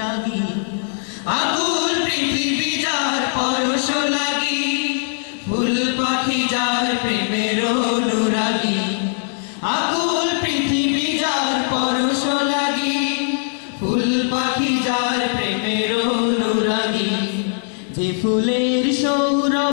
আকুল পৃথিবী যার পরশ লাগি, ফুল পাখি যার প্রেমের অনুরাগী। আকুল পৃথিবী যার পরশ লাগি, ফুল পাখি যার প্রেমের অনুরাগী। যে ফুলের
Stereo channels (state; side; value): silent; right; digital silence